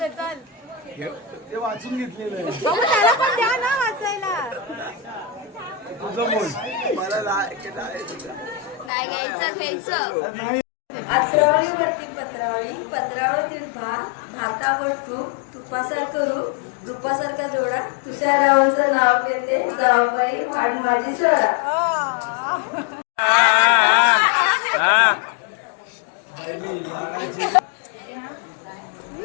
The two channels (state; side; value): drops out; right; at 8.9 s